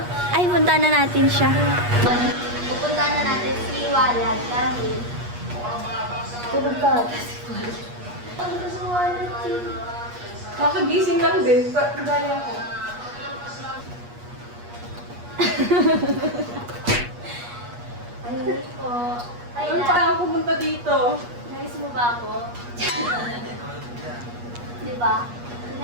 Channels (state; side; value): late; left; 8.4 ms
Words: Ay, punta na natin siya. Pupunta na natin si Walad dahil tulog ka. Punta si Walad. Nakagising lang din. Gaya ko. Ay, po. Ay, Ano pa ako pumunta dito? Nais mo ba ako? Diba?